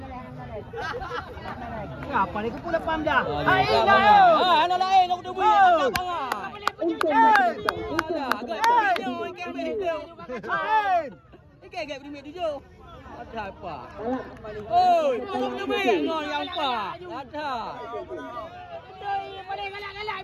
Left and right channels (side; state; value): both; identical; correlation 1.00